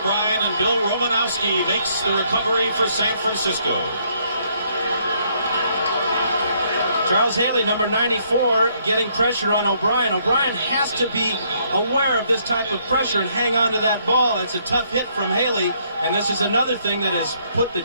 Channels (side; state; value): both; inverted; correlation -0.69